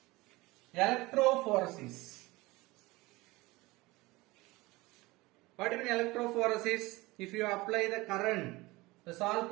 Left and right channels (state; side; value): quieter; left; 21.3 dB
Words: electrophoresis. What do you mean electrophoresis? If you apply the current, the salt